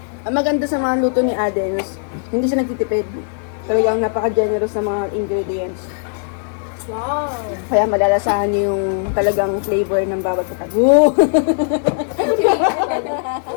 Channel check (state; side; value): silent; right; 67 dB below the other